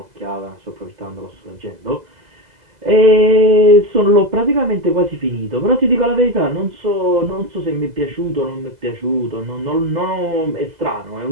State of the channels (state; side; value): late; left; 2.0 ms